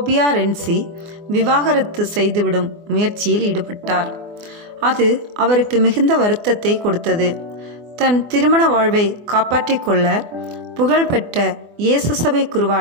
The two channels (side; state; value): left; late; 24 ms